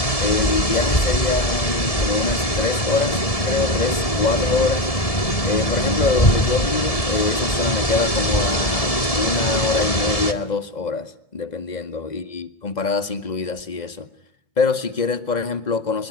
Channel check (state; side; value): late; right; 1.7 ms